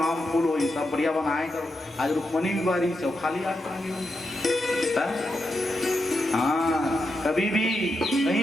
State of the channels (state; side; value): normal; both; correlation 0.86